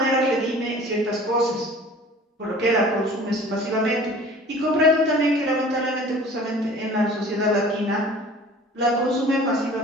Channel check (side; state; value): both; normal; correlation 0.45